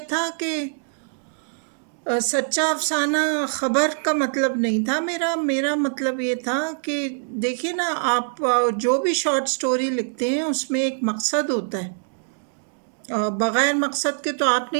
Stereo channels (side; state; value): left; silent; digital silence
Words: تھا کہ سچا افسانہ خبر کا مطلب نہیں تھا میرا مطلب یہ تھا کہ دیکھیے نا، آپ جو بھی شارٹ سٹوری لکھتے ہیں اس میں ایک مقصد ہوتا ہے، بغیر مقصد کے تو آپ